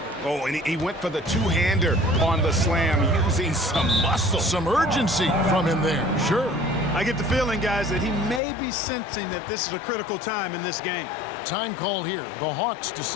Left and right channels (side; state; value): right; drops out; at 8.4 s